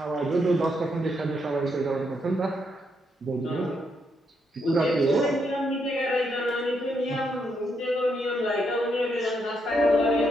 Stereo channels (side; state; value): both; normal; correlation 0.78